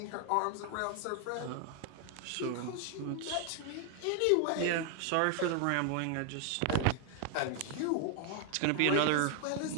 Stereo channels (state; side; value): different; both; correlation 0.00